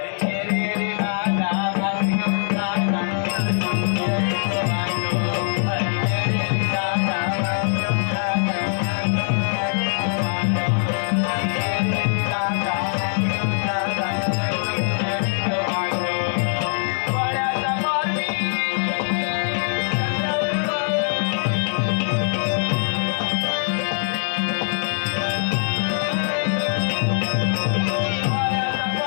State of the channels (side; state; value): right; silent; 63 dB below the other